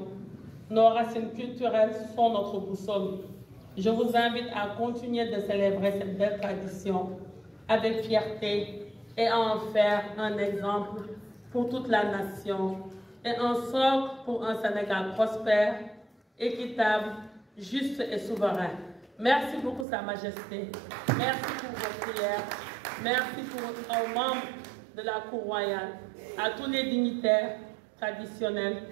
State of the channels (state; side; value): drops out; left; at 19.9 s